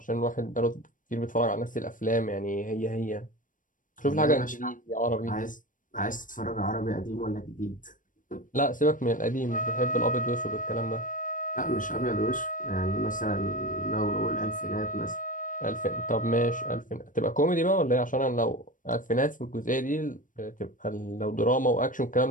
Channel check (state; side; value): late; right; 0.38 ms